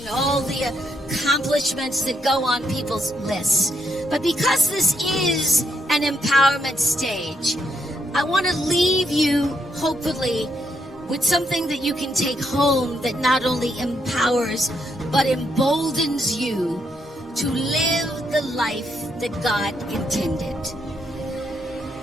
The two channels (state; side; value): normal; both; correlation 0.78